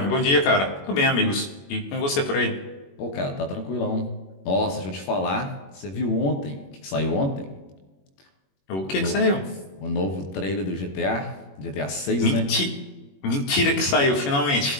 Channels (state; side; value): late; right; 21 ms